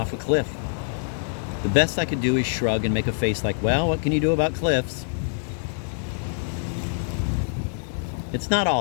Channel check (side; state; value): right; silent; digital silence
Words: a cliff. The best I could do is shrug and make a face like, well, what can you do about cliffs? It's not